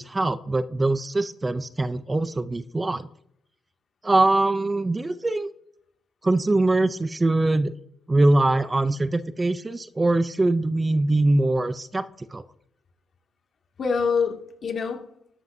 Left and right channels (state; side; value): normal; both; correlation 0.96